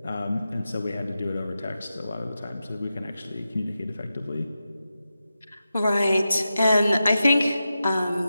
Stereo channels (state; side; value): inverted; both; correlation -0.91